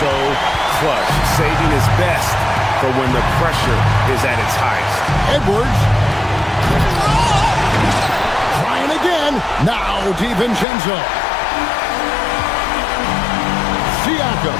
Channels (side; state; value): right; drops out; at 10.7 s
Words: so clutch, saving his best for when the pressure is at its highest. Edwards. Trying again. Now DiVincenzo. Siakam.